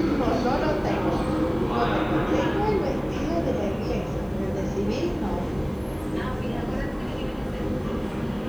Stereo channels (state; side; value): noise; right; hiss, 29 dB below the sound